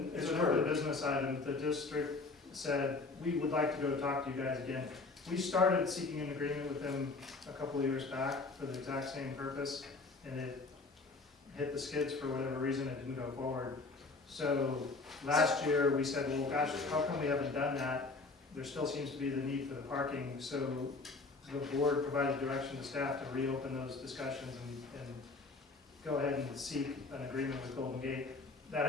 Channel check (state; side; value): quieter; right; 3.7 dB